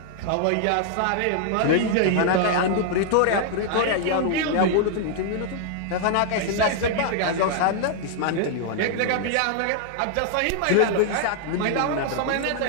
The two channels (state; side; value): different; both; correlation -0.01